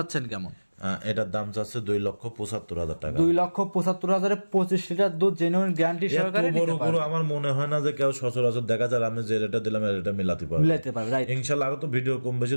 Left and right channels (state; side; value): inverted; both; correlation -1.00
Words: কেমন? এটার দাম চাচ্ছে 2,75,000 টাকা। 2,75,000 25 লিটার দুধ জেনুইন গ্যারান্টি সহকারে নিতে পারবে। আমার মনে হয় না যে কেউ সচরাচর দেখা যায় আমি যে রেটটা দিলাম এটা মিলাতে পারবে। রাইট, ইনশাআল্লাহ। আরো তো ভিডিও কম বেশি